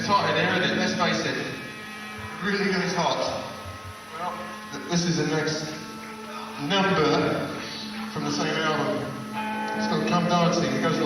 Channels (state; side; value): identical; both; correlation 1.00